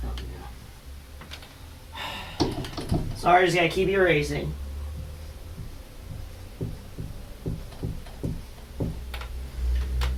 sorry, just gotta keep erasing.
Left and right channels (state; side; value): identical; both; correlation 1.00